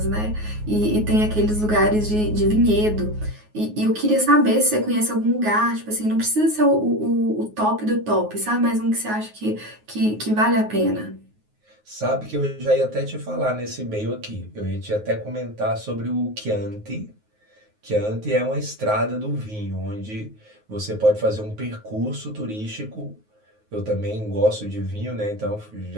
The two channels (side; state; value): left; late; 9.5 ms